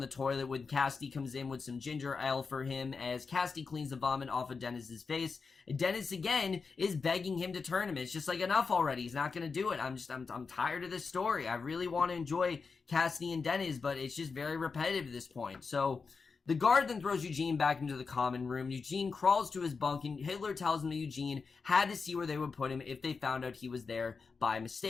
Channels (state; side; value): quieter; right; 4.9 dB